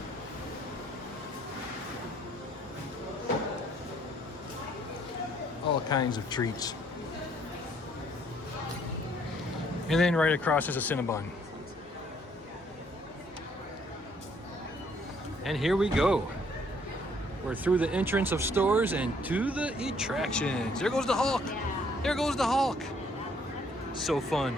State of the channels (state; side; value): normal; both; correlation 0.65